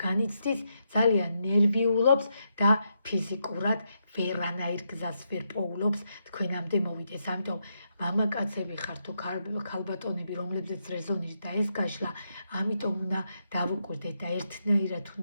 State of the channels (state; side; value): inverted; both; correlation -0.81